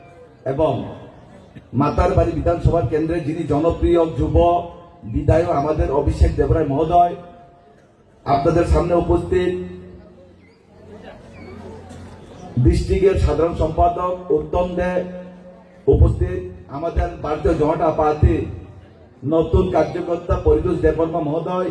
এবং মাতারবাড়ি বিধানসভা কেন্দ্রে যিনি জনপ্রিয় যুব বিধায়ক আমাদের অভিষেক দেবরায় মহোদয়, আপনাদের সামনে উপস্থিত ডিস্ট্রিক্টের সাধারণ সম্পাদক উত্তম দে, উপস্থিত আমাদের ভারতীয় জনতা পার্টি নতুন কার্যকর্তা পরিতোষ দেববর্মা মহোদয়,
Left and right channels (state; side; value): identical; both; correlation 1.00